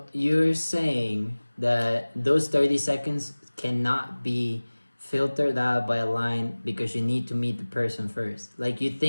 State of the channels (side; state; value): both; inverted; correlation -1.00